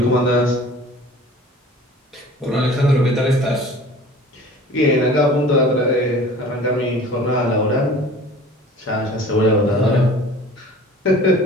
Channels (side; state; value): both; normal; correlation 0.45